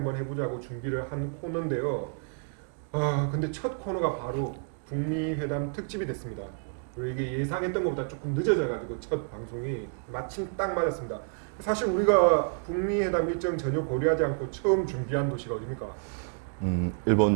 해보자고 준비를 한 코너인데요. 근데 첫 코너가 바로 북미 회담 특집이 됐습니다. 그리고 이게 예상했던 것보다 조금 늦어져가지고 첫 방송이 마침 딱 맞았습니다. 사실 우리가 북미 회담 일정 전혀 고려하지 않고 처음 준비한 도시가 어디입니까?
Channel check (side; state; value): left; silent; 58 dB below the other